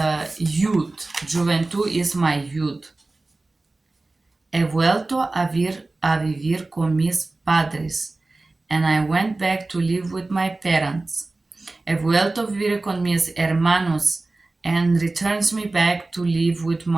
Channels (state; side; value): quieter; left; 3.2 dB